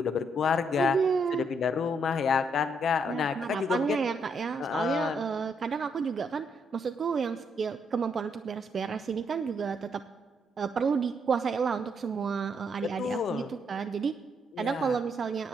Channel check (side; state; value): both; normal; correlation 0.74